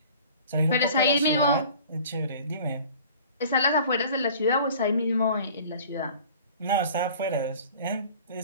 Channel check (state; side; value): inverted; both; correlation -0.46